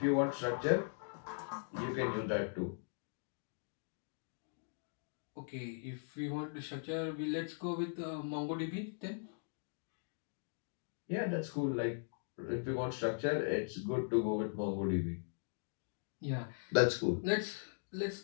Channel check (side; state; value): right; silent; digital silence